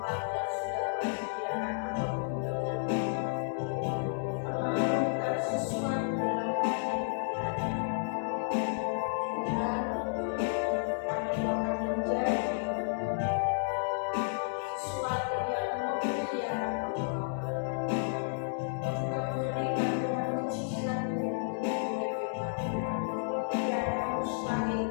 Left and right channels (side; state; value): right; silent; digital silence